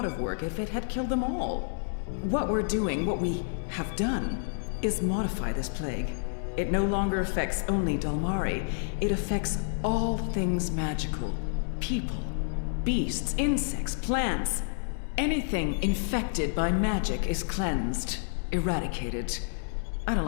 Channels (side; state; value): right; silent; 58 dB below the other